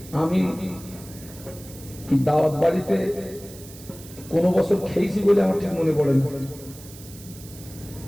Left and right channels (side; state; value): right; noise; hiss, 18 dB below the sound